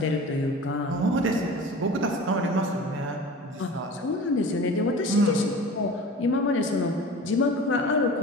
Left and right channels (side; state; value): both; normal; correlation 0.38